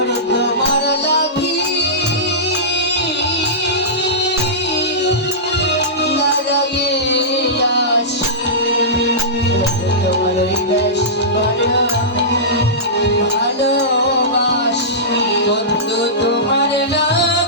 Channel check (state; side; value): normal; both; correlation -0.17